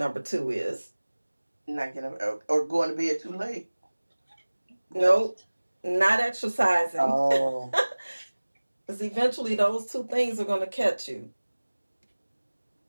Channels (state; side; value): inverted; both; correlation -1.00